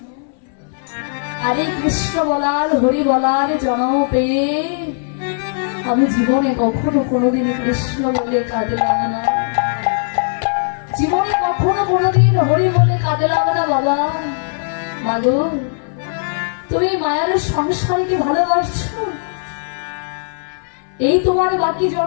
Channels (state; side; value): silent; right; 66 dB below the other